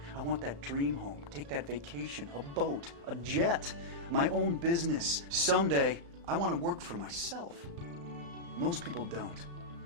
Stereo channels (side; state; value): left; late; 35 ms